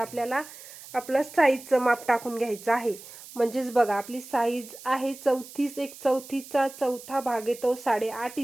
आपलं साईजचं माप टाकून घ्यायचं आहे. म्हणजेच बघा आपली साईज आहे 34, 1/4चा चौथा भाग येतो 8.5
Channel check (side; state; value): right; noise; hiss, 16 dB below the sound